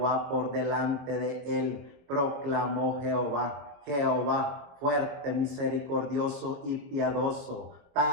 por delante de él, proclamó Jehová: Jehová, fuerte, misericordioso y piadoso,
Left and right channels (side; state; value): left; late; 21 ms